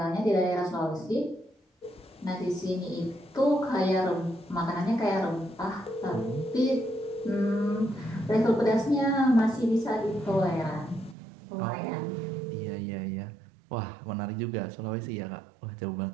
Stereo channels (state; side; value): drops out; left; at 11.2 s